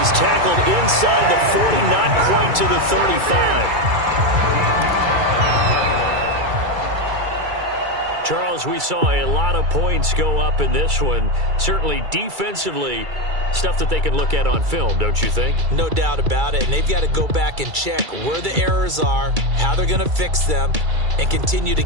tackled inside the 40, not quite to the 35. Charles, we saw a lot of points go up in this one. Certainly defensively, stuff that they can look at on film, don't you think? No doubt about it. And they've got to go back and check where the errors are, how they're going to fix them, and continue to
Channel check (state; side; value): late; left; 2.3 ms